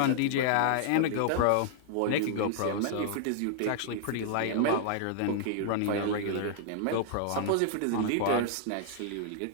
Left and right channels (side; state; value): both; different; correlation -0.01